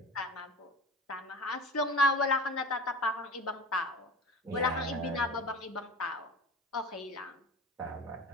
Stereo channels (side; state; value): both; normal; correlation 0.34